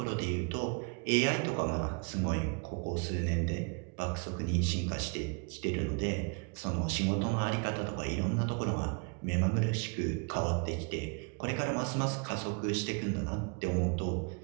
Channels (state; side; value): quieter; left; 34.9 dB